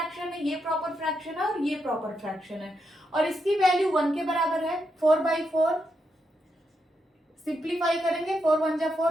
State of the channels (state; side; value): normal; both; correlation 0.82